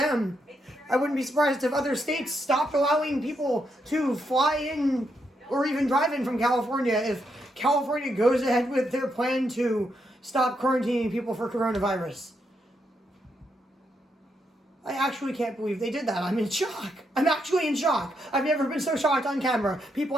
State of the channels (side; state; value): both; normal; correlation 0.80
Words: I wouldn't be surprised if other states stopped allowing people to fly in or even drive in from California if California goes ahead with their plan to stop quarantining people for coronavirus. I actually can't believe they did that. I'm in shock. I'm actually in shock. I've never been so shocked on camera. People,